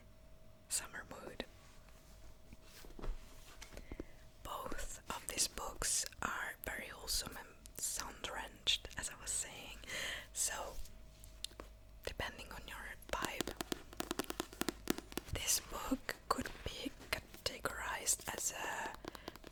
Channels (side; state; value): both; identical; correlation 1.00